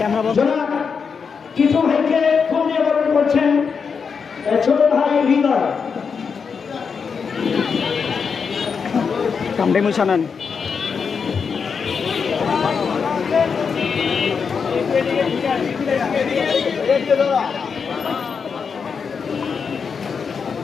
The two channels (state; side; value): quieter; right; 5.9 dB